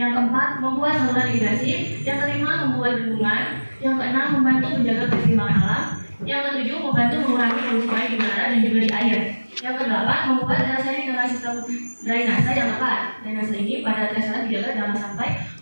keempat, membuat saluran irigasi. Yang kelima, membuat bendungan. Yang keenam, membantu menjaga keseimbangan alam. Yang ketujuh, membantu mengurangi polusi air di udara dan juga di air. Yang kedelapan, membuat drainase dengan sistem drainase yang tepat. Drainase ini pada dasarnya dijaga jangan sampai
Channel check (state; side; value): inverted; both; correlation -1.00